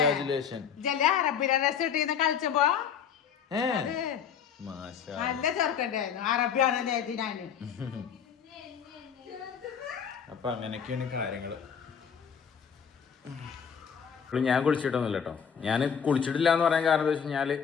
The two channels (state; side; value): quieter; right; 7.4 dB